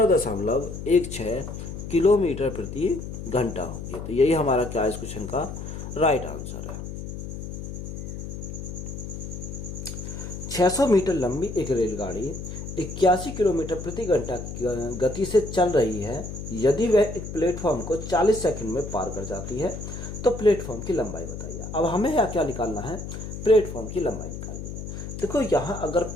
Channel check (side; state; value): left; noise; hum, 8 dB below the sound